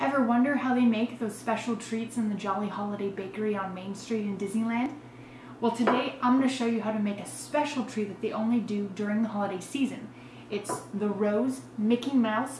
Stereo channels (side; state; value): both; identical; correlation 1.00